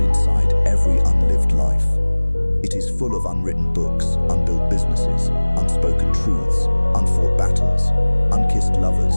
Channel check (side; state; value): both; inverted; correlation -1.00